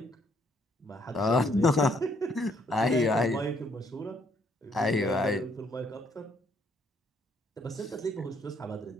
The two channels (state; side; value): normal; both; correlation 0.68